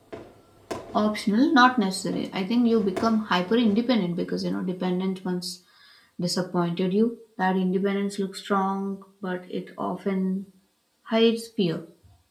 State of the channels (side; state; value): both; identical; correlation 1.00